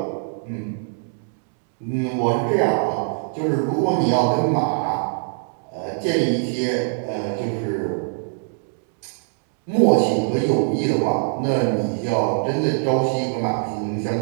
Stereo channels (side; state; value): left; silent; digital silence